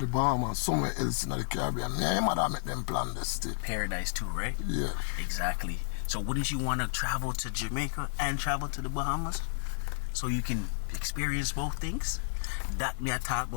the Bahamas, somewhere else in the Caribbean. Me and your mother make them plan this thing. Paradise too, right? Yeah. Exactly. So wouldn't you want to travel to Jamaica and travel to the Bahamas? So you can experience both things? That me I talk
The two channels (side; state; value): right; silent; 57 dB below the other